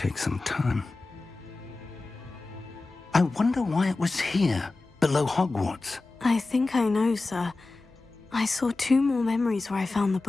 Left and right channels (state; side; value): quieter; right; 3.4 dB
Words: some time. I wonder why it was here, below Hogwarts. I think I know, sir. I saw 2 more memories where I found the